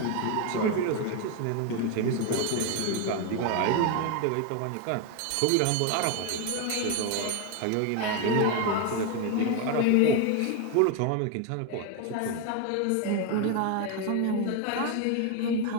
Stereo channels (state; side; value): different; both; correlation 0.02